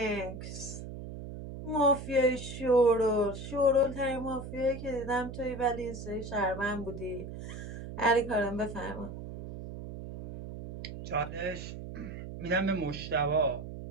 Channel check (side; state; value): right; noise; hum, 9 dB below the sound